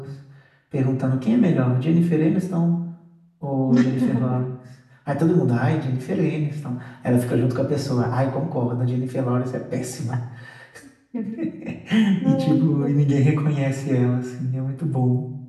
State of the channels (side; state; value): both; identical; correlation 1.00